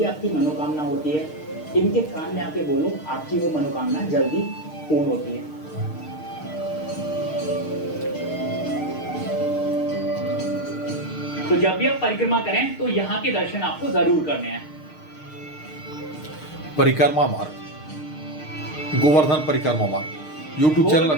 आपकी मनोकामना होती है इनके कान में आके बोलो, आपकी वो मनोकामना जल्दी पूर्ण होती है। तो जब भी आप परिक्रमा करें तो यहाँ के दर्शन आपको जरूर करने हैं। परिक्रमा मार्ग, गोवर्धन परिक्रमा मार्ग यूट्यूब चैनल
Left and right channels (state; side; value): late; right; 6.5 ms